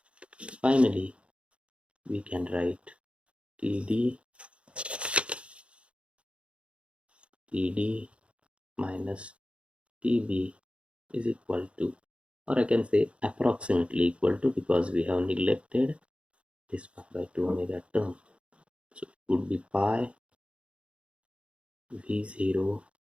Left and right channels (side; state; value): left; late; 0.059 ms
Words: Finally, we can write Td minus Tb is equal to, or I can say approximately equal to, because we have neglected this 1 by 2 omega term. So it would be pi V0